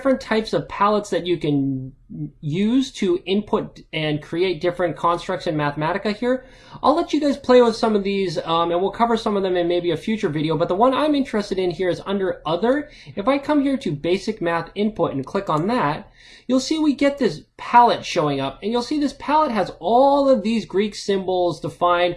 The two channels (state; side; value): identical; both; correlation 1.00